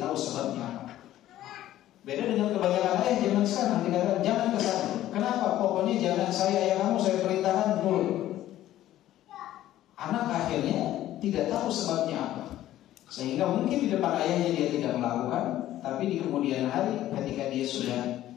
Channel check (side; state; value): right; quieter; 13.5 dB